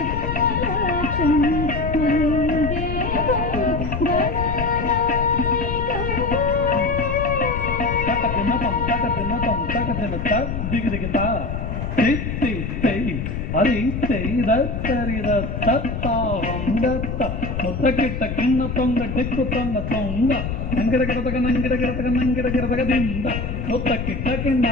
ದಿಗಿದಿಗಿತ ತಿತ್ತಿ ತೈ ಹರಿ ತೈದ ತರಿದ ತತ್ತ ಹೊಂದತ್ತ ಮುತ್ತಕಿಟ್ಟ ಕಿಣ್ಣ ತೊಂಗ ದಿಕ್ಕು ತೊಂಗ ತೊಂಗ ನಂಗಿಡ ಗಿಡದಗ ನಂಗಿಡ ಗಿಡದಗ ನಂಗಿಡ ಗಿಡದಗ ದಿಂದ ಮುತ್ತಕಿಟ್ಟ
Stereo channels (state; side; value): noise; left; rumble, 4 dB below the sound